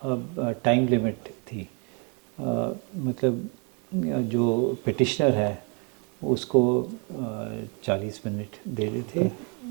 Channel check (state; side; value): quieter; left; 35.5 dB